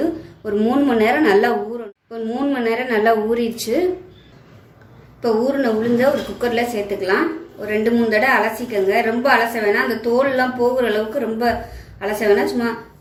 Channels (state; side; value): identical; both; correlation 1.00